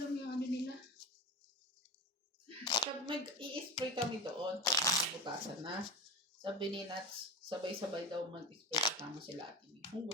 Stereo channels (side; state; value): both; normal; correlation 0.27